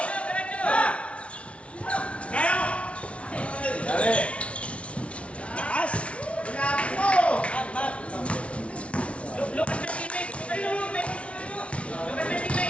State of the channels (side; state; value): right; late; 0.062 ms